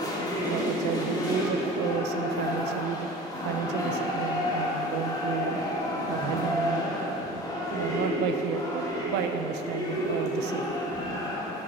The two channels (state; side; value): normal; both; correlation 0.39